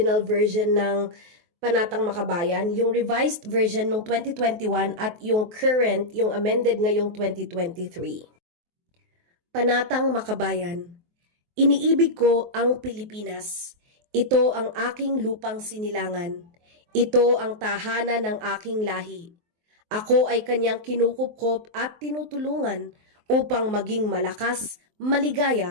version ng Panatang Makabayan, yung revised version ng 2021 at yung current, yung amended ngayong 2023. Panatang Makabayan. Iniibig ko ang Pilipinas. Ito ang aking lupang sinilangan. Ito ang tahanan ng aking lahi. Ako ay kanyang kinukupkop at tinutulungan upang maging malakas,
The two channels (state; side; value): late; left; 23 ms